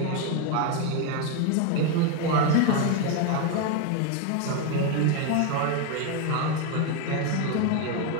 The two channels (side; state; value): both; different; correlation 0.01